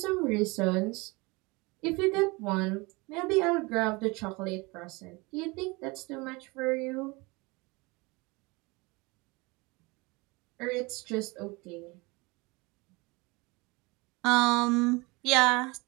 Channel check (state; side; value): quieter; left; 25.6 dB